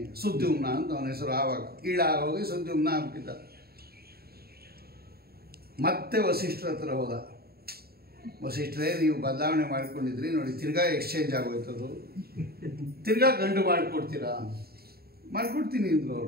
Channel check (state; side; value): late; left; 0.45 ms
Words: ಸುದ್ಯುಮ್ನ ಅಂತ ಅವನ ಹೆಸರು. ಆವಾಗ ಹೋಗಿ ಸುದ್ಯುಮ್ನ ಆಗ್ಬಿಟ್ಟಿದ್ದ. ಮತ್ತೆ ವಸಿಷ್ಠರ ಹತ್ರ ಹೋದ. ವಸಿಷ್ಠರೇ, ನೀವು ಬದಲಾವಣೆ ಮಾಡ್ಕೊಂಡಿದ್ರಿ ನೋಡಿ, ತಿರ್ಗಾ ಎಕ್ಸ್ಚೇಂಜ್ ಆಗೋಯ್ತದು, ತಿರ್ಗಾ ಗಂಡು ಮಾಡಿಕೊಡ್ತೀರಾ? ಮಾಡಿಕೊಡ್ತೀನಿ ಅಂದರು